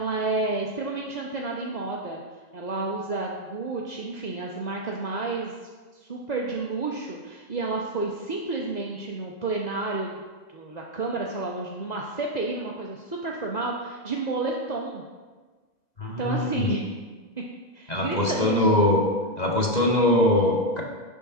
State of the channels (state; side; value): late; right; 2.0 ms